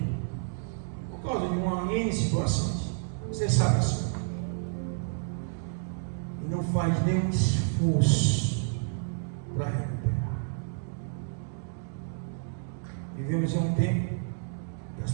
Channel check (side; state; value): left; silent; digital silence